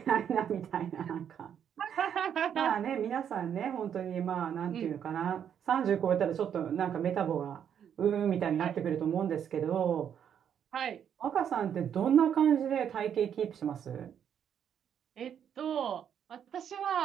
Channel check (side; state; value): left; quieter; 8.7 dB